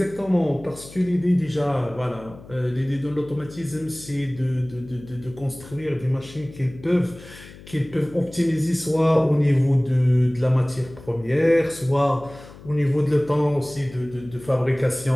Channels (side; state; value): left; noise; hum, 19 dB below the sound